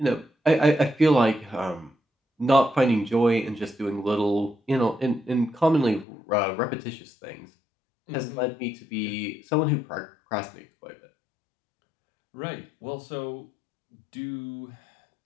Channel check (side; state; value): right; drops out; at 6.1 s